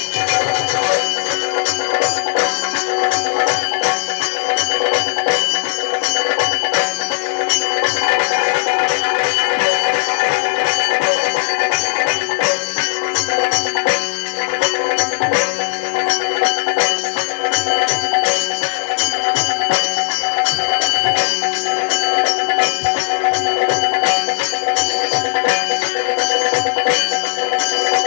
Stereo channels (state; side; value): silent; right; 68 dB below the other